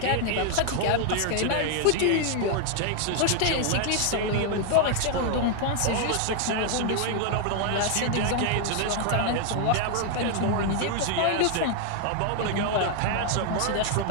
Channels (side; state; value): both; different; correlation 0.00